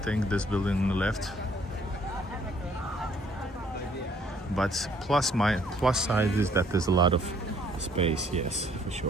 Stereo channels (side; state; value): both; normal; correlation 0.63